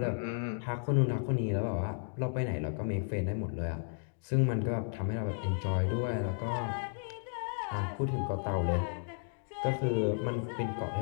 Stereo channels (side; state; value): right; silent; digital silence